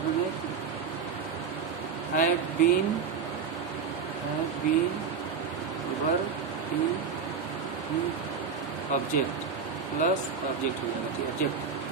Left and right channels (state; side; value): quieter; left; 6.0 dB